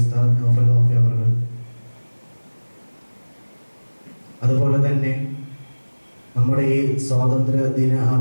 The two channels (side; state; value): both; inverted; correlation -1.00